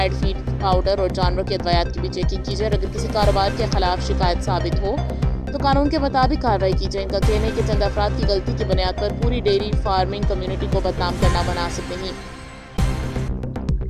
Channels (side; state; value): both; identical; correlation 1.00